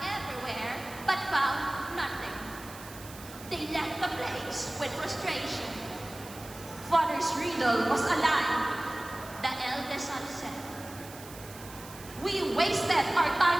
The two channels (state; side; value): noise; right; hiss, 16 dB below the sound